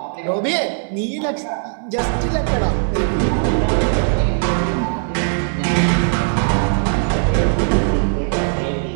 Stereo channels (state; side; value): silent; left; digital silence